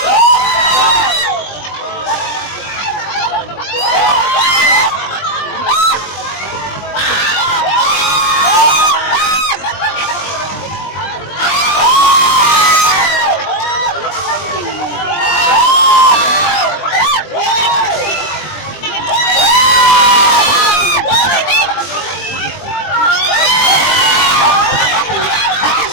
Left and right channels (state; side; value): late; right; 20 ms